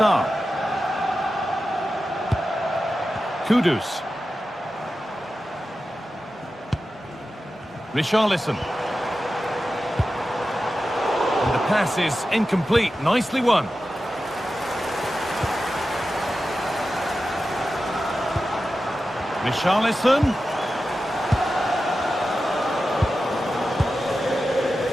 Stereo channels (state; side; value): normal; both; correlation 0.92